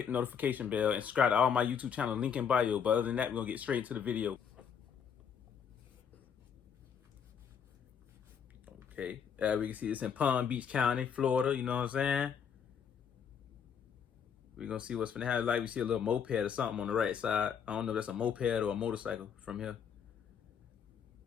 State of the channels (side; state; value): right; quieter; 7.4 dB